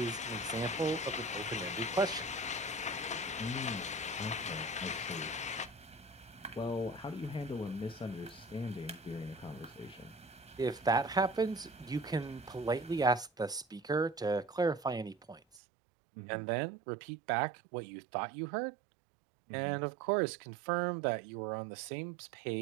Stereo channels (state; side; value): drops out; left; at 15.6 s